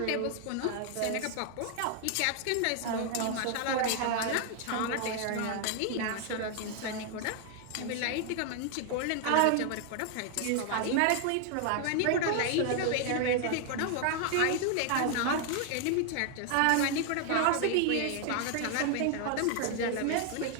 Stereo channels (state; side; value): different; both; correlation 0.00